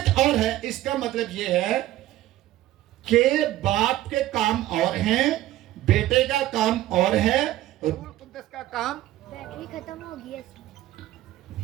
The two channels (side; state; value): left; quieter; 14.8 dB